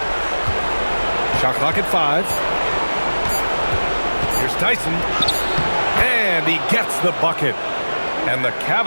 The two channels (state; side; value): inverted; both; correlation -1.00